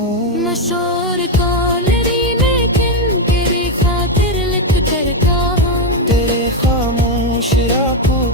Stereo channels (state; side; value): normal; both; correlation 0.06